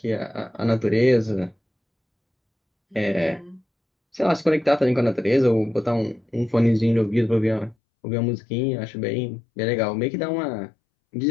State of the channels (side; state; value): right; drops out; at 7.8 s